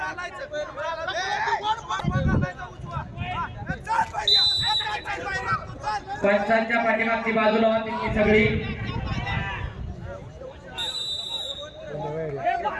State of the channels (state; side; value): identical; both; correlation 1.00